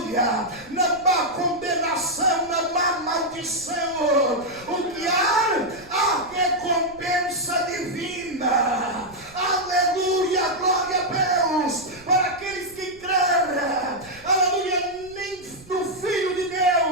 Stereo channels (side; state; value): right; noise; rumble, 24 dB below the sound